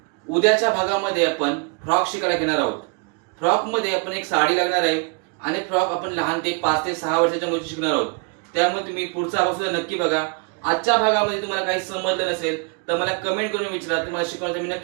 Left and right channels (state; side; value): quieter; left; 32.4 dB